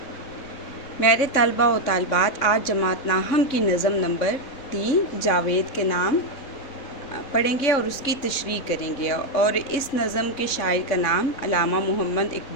मेरे तलबा व तालिबात, आज जमात नाहम की नज़म नंबर 3 जावेद के नाम पढ़ेंगे और उसकी तशरीह करेंगे। और इस नज़म के शायर का नाम अल्लामा मोहम्मद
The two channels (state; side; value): late; right; 3.6 ms